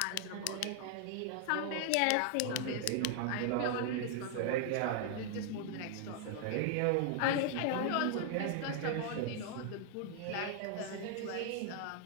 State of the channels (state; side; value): different; both; correlation 0.00